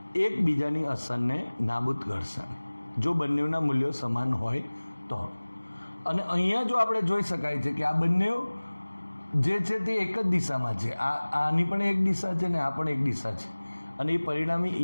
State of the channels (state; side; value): inverted; both; correlation -1.00